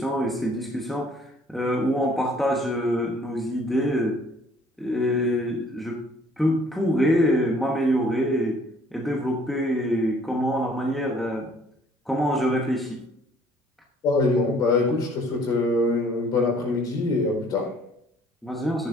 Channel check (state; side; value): normal; both; correlation 0.59